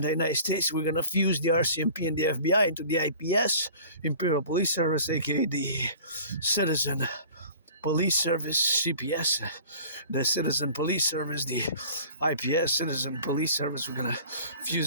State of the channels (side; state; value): both; inverted; correlation -0.45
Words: United States, we're going to fuse the RCMP and the FBI into the IPS, Imperial Police Service, aka the Citizen Police Service, CPS, the Citizen Police Service, the IPS, Citizen Police Service. We're going to